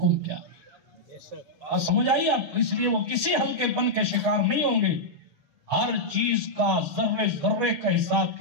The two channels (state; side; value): late; left; 6.5 ms